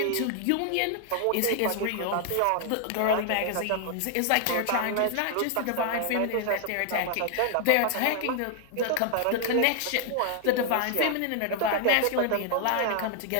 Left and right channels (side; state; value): both; different; correlation 0.00